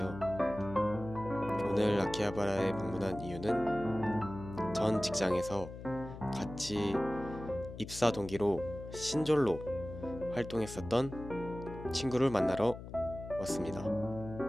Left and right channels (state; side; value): noise; left; hum, 12 dB below the sound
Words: 오늘 아키하바라에 방문한 이유는 전 직장에서 같이 입사 동기로 신졸로 활동했었던 친구를 만나러 왔습니다.